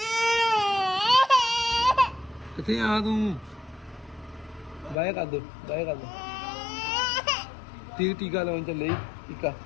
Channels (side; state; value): right; drops out; at 5.0 s